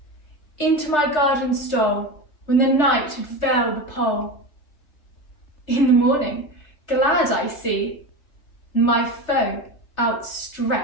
Into my garden stole, when the night had veiled the pole. In the morning, glad I see, my foe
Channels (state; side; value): late; right; 3.4 ms